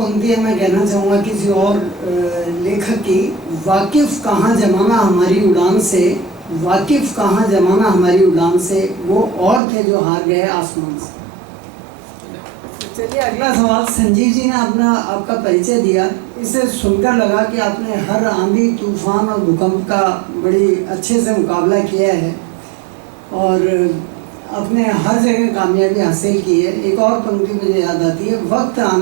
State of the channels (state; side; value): drops out; left; at 9.6 s